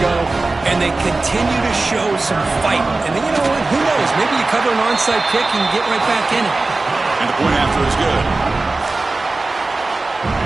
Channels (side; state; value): left; quieter; 3.3 dB